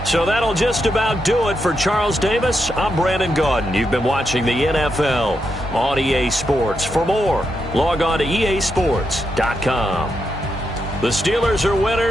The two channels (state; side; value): normal; both; correlation 0.83